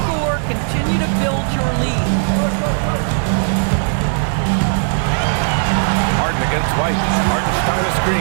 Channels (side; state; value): left; silent; 68 dB below the other